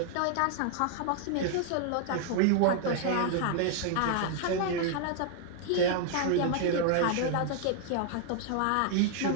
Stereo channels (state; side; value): different; both; correlation 0.00